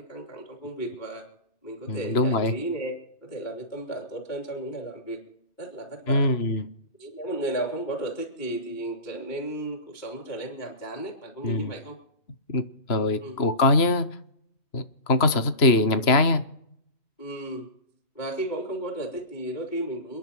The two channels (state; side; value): late; right; 3.0 ms